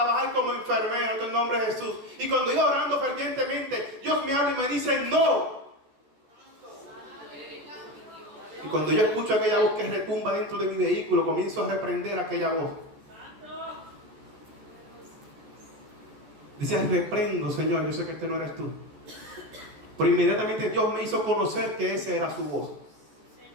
como enfermera en el nombre de Jesús. Y cuando iba orando fervientemente, Dios me habla y me dice, no. Y cuando yo escucho aquella voz que retumba dentro de mi vehículo, comienzo a reprender aquella voz. Dice, reprendo, Señor, yo sé que este no eres tú. Pero inmediatamente Dios me hizo conocer que esa era su voz.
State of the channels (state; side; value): late; left; 14 ms